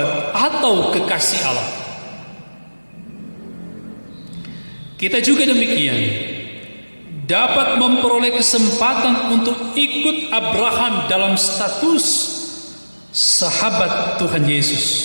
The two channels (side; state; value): both; inverted; correlation -1.00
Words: atau kekasih Allah. Kita juga demikian dapat memperoleh kesempatan untuk ikut Abraham dalam status sahabat Tuhan Yesus,